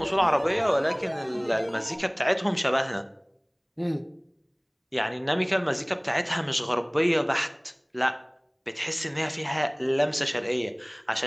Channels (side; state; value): both; identical; correlation 1.00